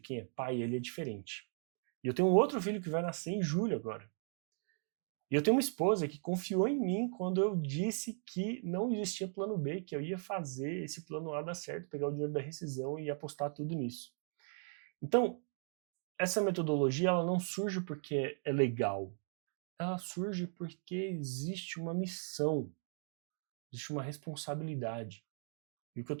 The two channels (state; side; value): silent; left; 53 dB below the other